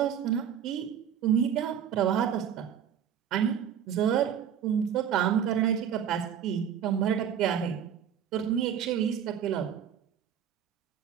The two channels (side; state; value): left; quieter; 8.7 dB